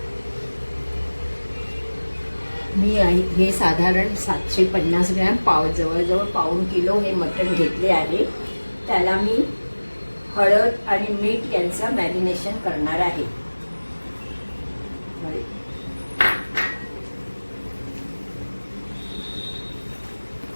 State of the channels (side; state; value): both; inverted; correlation -1.00